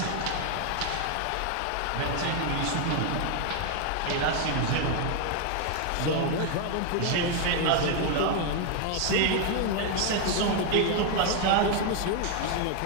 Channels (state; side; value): different; both; correlation 0.01